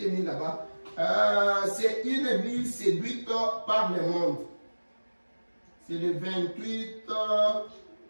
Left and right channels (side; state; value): both; inverted; correlation -1.00